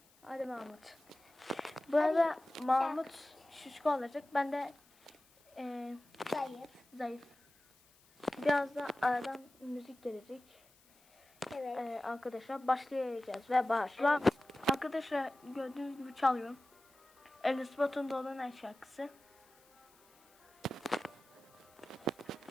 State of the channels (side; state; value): left; noise; hiss, 30 dB below the sound